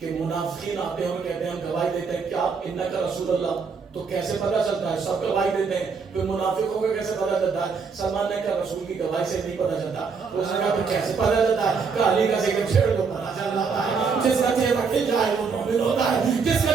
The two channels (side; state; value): left; quieter; 5.3 dB